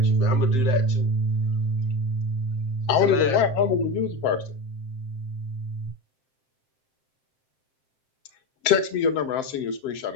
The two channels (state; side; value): late; right; 7.6 ms